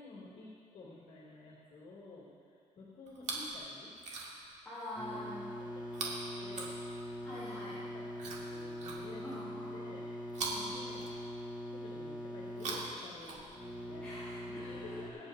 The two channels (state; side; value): normal; both; correlation 0.50